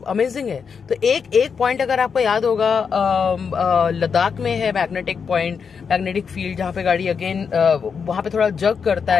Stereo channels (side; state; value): right; quieter; 6.2 dB